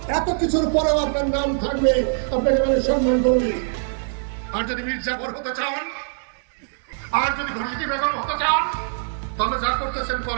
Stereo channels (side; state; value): left; silent; digital silence